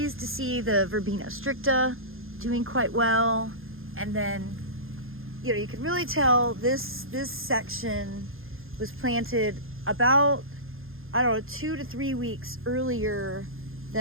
to see the verbena stricta doing quite well. And then, you know, you can really tell this section was planted about, I don't know, 2 to 3 weeks earlier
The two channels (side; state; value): left; late; 0.60 ms